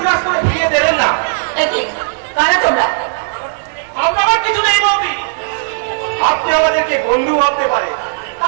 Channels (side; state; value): left; silent; digital silence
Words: করে ফিরিয়ে দেবেন না। একই কারা তোমরা? আমরা আমার কিছু নেই বৌদি, আপনি আমাদেরকে বন্ধু ভাবতে পারেন।